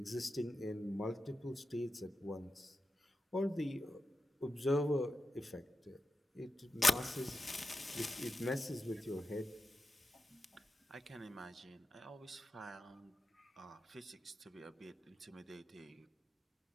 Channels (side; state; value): both; normal; correlation 0.90